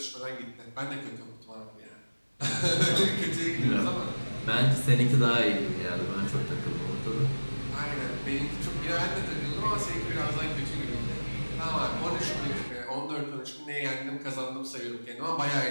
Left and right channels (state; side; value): inverted; both; correlation -1.00